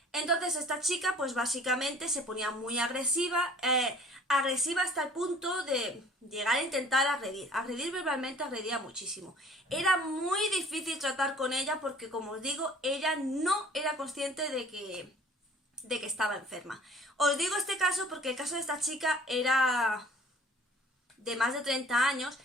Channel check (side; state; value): both; normal; correlation 0.51